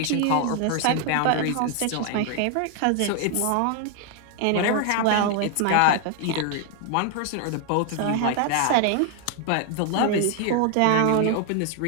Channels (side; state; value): both; different; correlation 0.00